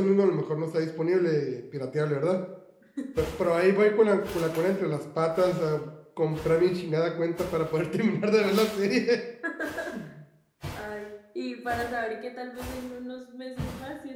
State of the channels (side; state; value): both; identical; correlation 1.00